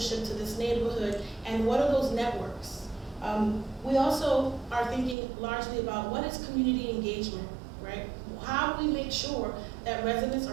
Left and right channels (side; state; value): left; drops out; at 5.2 s